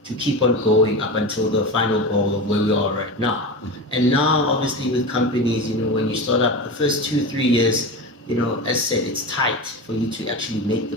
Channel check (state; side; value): normal; both; correlation 0.25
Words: to keep on going up until the final goal of where we are right now. And now, obviously, with companies, you know, when you start up the first 2-3 years, you know, as said, it's tight for you to actually make the